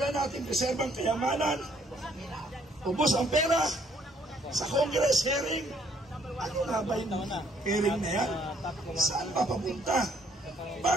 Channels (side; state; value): both; normal; correlation 0.65